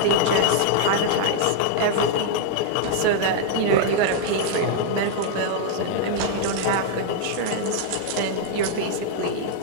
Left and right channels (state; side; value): different; both; correlation -0.01